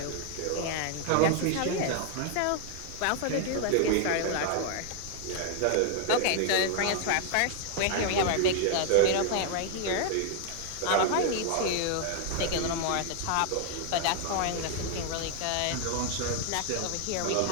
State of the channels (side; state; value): both; different; correlation 0.00